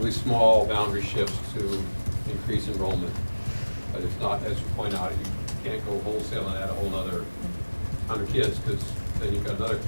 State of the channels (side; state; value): both; inverted; correlation -1.00